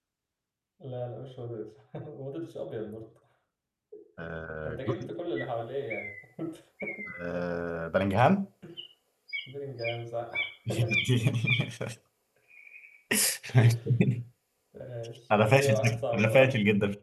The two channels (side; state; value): both; identical; correlation 1.00